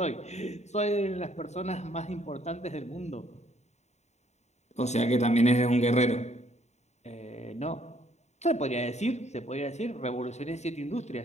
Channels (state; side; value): late; right; 0.32 ms